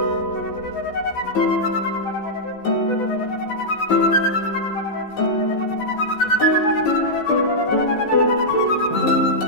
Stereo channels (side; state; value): right; late; 14 ms